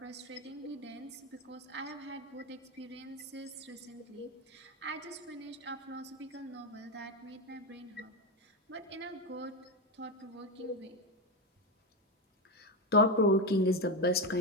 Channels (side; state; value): both; normal; correlation 0.12